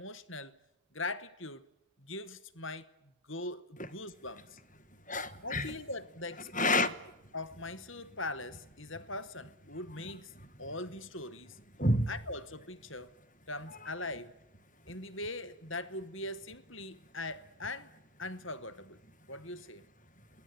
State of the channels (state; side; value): normal; both; correlation 0.17